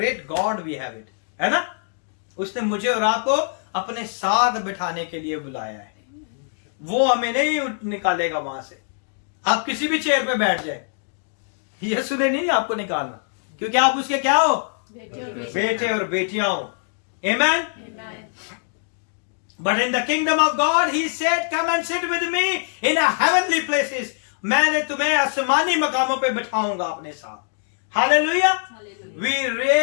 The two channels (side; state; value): right; silent; digital silence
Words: God we have it, है ना। उसने मुझे और आपको अपने साथ बिठाने के लिए बुलाया है। वो हमें नहीं निकालेगा वहां से। आप किसी भी चेयर पे बैठ जाए, यीशु ने नहीं आपको निकालना, क्योंकि आप उसके क्या हो, बेटे और बेटियां हो। आमेन। But in the kingdom of God, he said, come and sit with me in a heavenly places. मैंने तुम्हें आसमानी मकामों पे बिठाऊंगा अपने साथ। Hallelujah. We